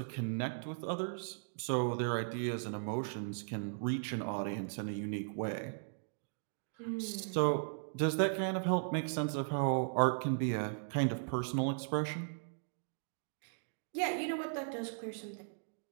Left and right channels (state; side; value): silent; left; digital silence